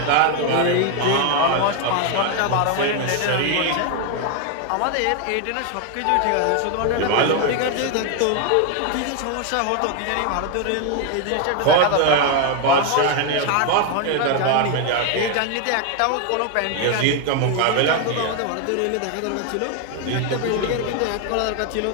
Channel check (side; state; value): both; different; correlation 0.01